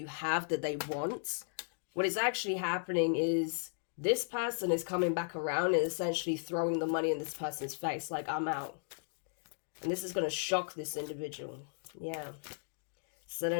have that they want, what is actually happening is this person is coming back around and essentially throwing the money in this person's face, like, I'm out. And this is going to shock this individual. Yeah. So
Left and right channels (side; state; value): right; silent; digital silence